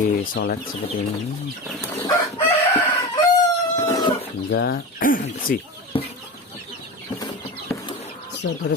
seperti ini hingga bersih.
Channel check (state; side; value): normal; both; correlation 0.26